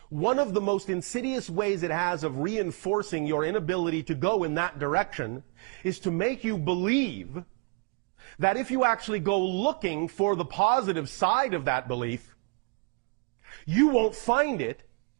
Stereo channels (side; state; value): left; quieter; 33.7 dB